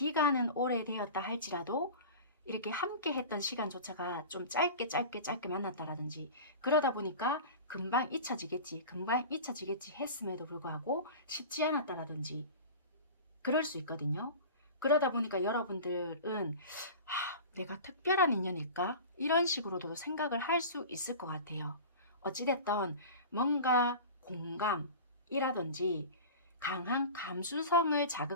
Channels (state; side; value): inverted; both; correlation -0.34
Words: 오래되었다 할지라도 이렇게 함께 했던 시간조차가 좀 짧게 만났다라든지 그러다 보니까 금방 잊혀지겠지 했음에도 불구하고 쉽지 않았다라든지 그럴 수 있거든요. 그러다 보니까 여러분들은 내가 특별한 인연일까? 이런 식으로도 생각을 할 수 있을 것 같아요. 어찌됐든 뭔가 공감이라든지 강한 감수성을